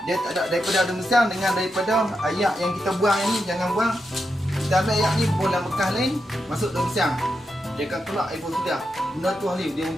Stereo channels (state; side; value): normal; both; correlation 0.86